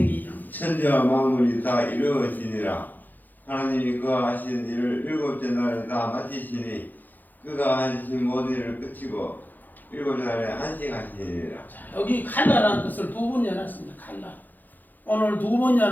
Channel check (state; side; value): late; right; 0.085 ms